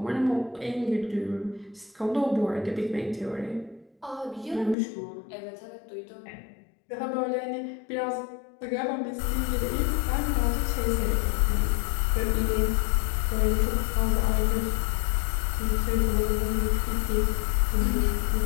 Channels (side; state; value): right; drops out; at 4.8 s